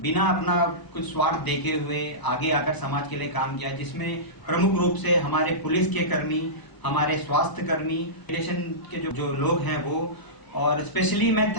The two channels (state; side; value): late; right; 1.0 ms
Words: बिना अपना कुछ स्वार्थ देखे हुए आगे आकर समाज के लिए काम किया, जिसमें प्रमुख रूप से हमारे पुलिस के कर्मी, हमारे स्वास्थ्य कर्मी, इमिग्रेशन के जो लोग हैं वो, और स्पेशली मैं